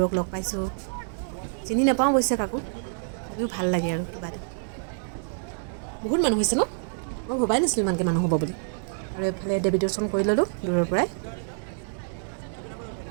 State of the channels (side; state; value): left; silent; digital silence